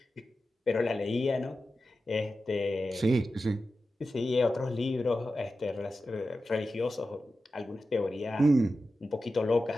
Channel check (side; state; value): both; normal; correlation 0.92